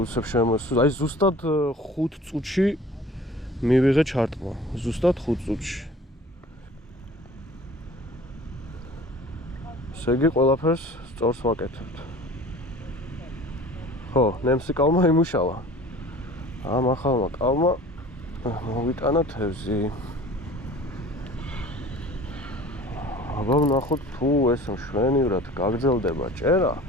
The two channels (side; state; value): both; normal; correlation 0.44